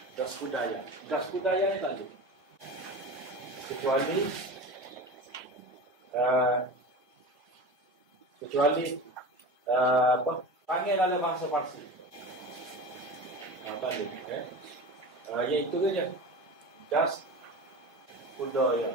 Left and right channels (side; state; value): both; normal; correlation 0.31